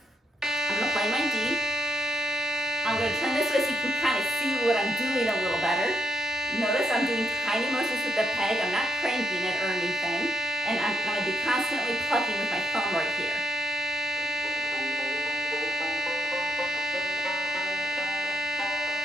I'm gonna play my D. I'm gonna turn this way so you can kind of see what I'm doing a little better. Notice I'm doing tiny motions with the peg. I'm not cranking it or anything. And I'm going to be constantly plucking with my thumb right here.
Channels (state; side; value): normal; both; correlation 0.81